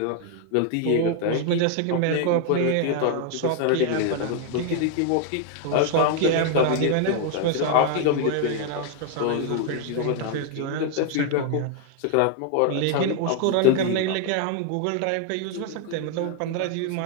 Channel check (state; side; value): different; both; correlation 0.00